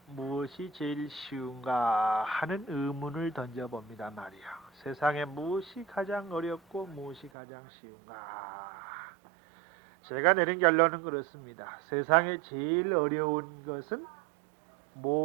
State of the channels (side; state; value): left; drops out; at 7.3 s